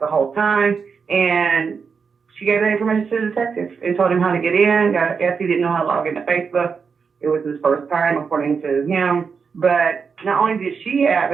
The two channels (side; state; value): left; quieter; 5.7 dB